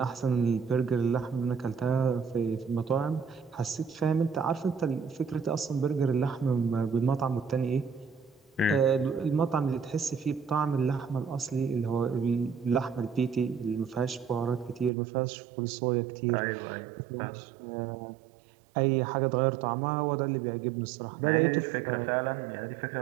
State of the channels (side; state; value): left; drops out; at 14.9 s